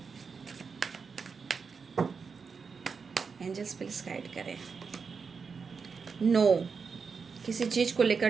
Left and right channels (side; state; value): left; quieter; 5.4 dB